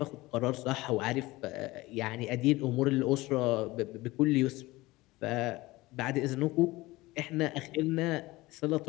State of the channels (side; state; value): right; quieter; 20.0 dB